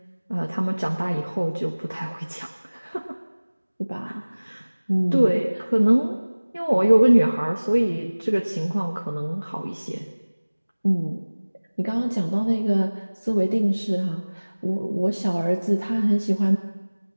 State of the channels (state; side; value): inverted; both; correlation -1.00